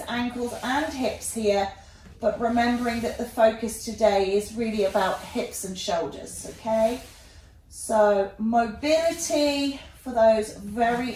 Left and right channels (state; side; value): identical; both; correlation 1.00